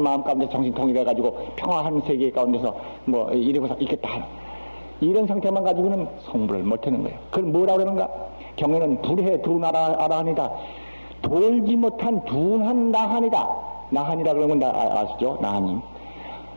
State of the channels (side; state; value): both; inverted; correlation -1.00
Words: 마음 가운데 정신 통일해가지고 평화한 세계 가운데서 이러고서 있겠다. 이런 상태만 가지고는 성불을 못하는 거예요. 그걸 뭐라고 그러는가? 경에는 불해 두나라하니다. 돌지 못한 둔한 나한이다. 나한이라 그러면 아시죠? 나한님.